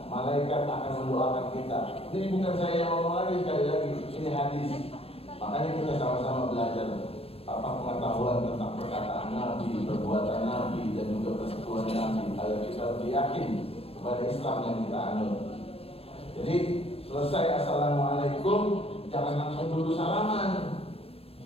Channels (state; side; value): late; right; 0.28 ms